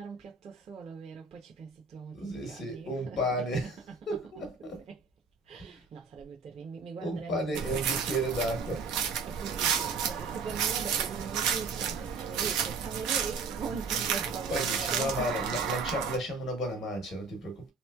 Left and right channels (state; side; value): quieter; left; 4.2 dB